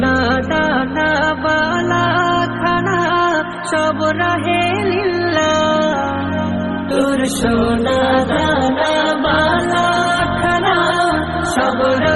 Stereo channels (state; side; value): identical; both; correlation 1.00